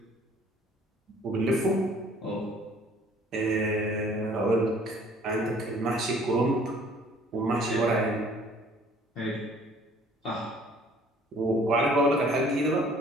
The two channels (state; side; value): normal; both; correlation 0.55